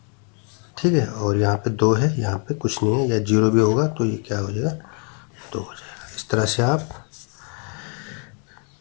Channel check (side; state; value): right; quieter; 38.9 dB